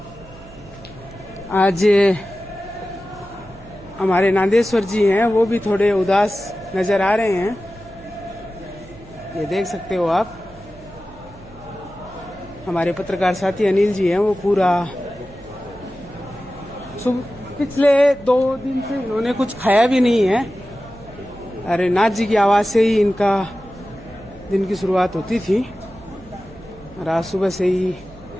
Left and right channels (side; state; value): right; noise; hum, 21 dB below the sound